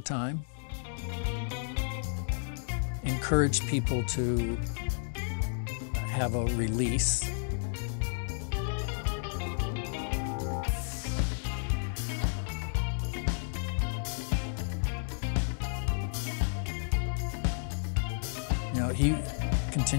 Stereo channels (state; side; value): silent; right; digital silence